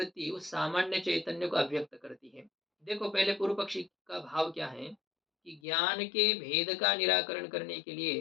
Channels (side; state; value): right; drops out; at 5.6 s